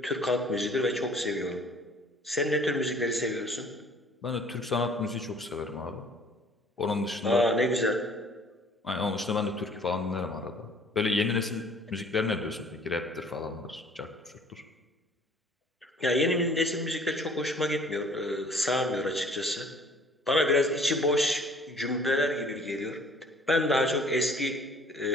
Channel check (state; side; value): normal; both; correlation 0.54